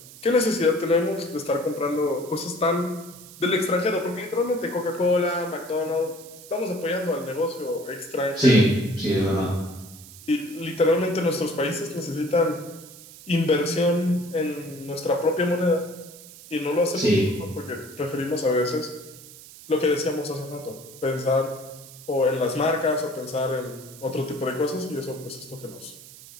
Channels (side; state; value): right; noise; hiss, 18 dB below the sound